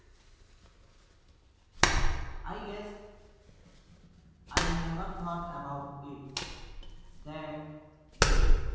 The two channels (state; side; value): identical; both; correlation 1.00